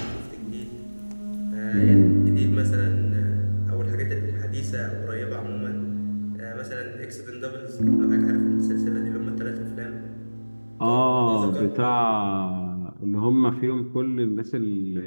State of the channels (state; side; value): inverted; both; correlation -1.00